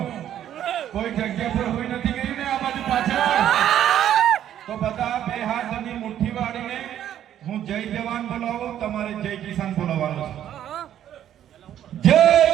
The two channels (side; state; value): left; quieter; 10.9 dB